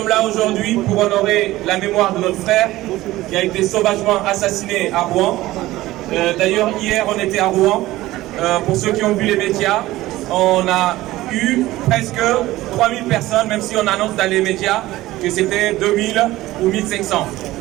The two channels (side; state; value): left; quieter; 17.0 dB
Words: là aujourd'hui pour honorer la mémoire de notre frère qui a été sauvagement assassiné à Rouen. D'ailleurs, hier, on était à Rouen. Pour ceux qui ont vu les médias, on a eu presque 3000 personnes, même si on annonce dans les médias que c'était 2000 ou 1500.